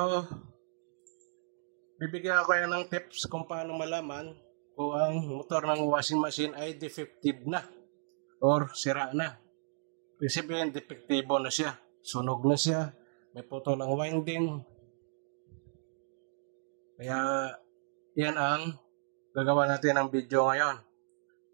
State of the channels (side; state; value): left; silent; digital silence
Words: bibigyan ko kayo ng tips kung paano malaman kung ang motor ng washing machine ay defective na or sira na. Ibig sabihin, defektibo na siya. Sunog na siya. May putol ang winding. Kaya, yan ang gagawa natin ng video ngayon.